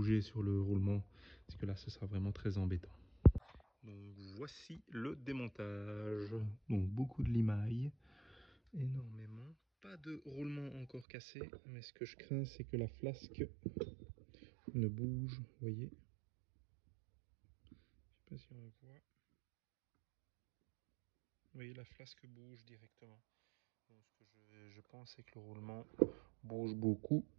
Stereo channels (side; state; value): left; drops out; at 11.1 s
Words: sur le roulement, parce que là ce sera vraiment très embêtant. Donc voici le démontage. Donc beaucoup de limaille, énormément, pas de roulement encore cassé, mais ce que je crains c'est que la flasque ne bouge, vous voyez. Je sais pas si on voit. Vous voyez, la flasque bouge directement. Donc, ce que je pense, c'est que le roulement bouge beaucoup,